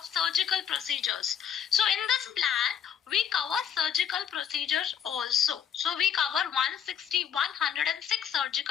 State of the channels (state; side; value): quieter; right; 8.5 dB